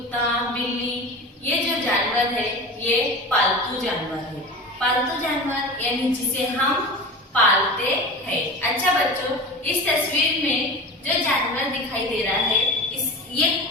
बिल्ली, ये जो जानवर है ये पालतू जानवर है। पालतू जानवर यानी जिसे हम पालते हैं। अच्छा बच्चों, इस तस्वीर में जो जानवर दिखाई दे रहा है ये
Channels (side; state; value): both; normal; correlation 0.32